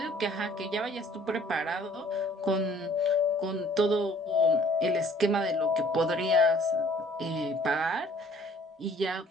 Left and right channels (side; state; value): both; normal; correlation 0.56